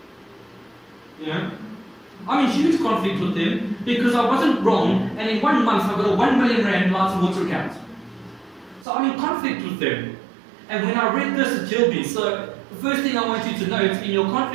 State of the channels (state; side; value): drops out; left; at 8.8 s